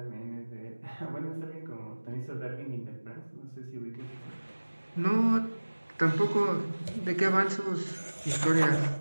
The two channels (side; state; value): both; inverted; correlation -1.00